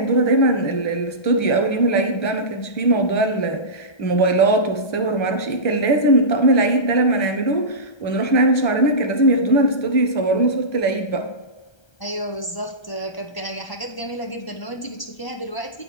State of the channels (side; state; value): right; late; 1.3 ms